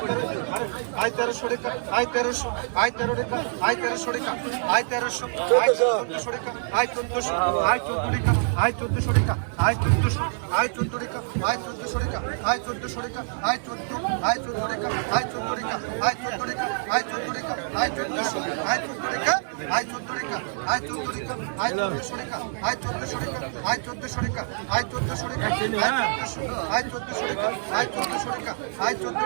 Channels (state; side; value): silent; left; digital silence